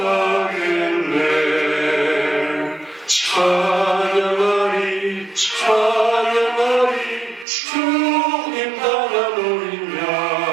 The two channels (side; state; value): left; drops out; at 7.5 s